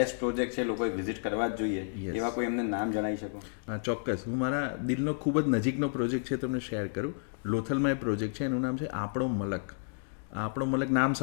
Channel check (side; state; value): right; silent; digital silence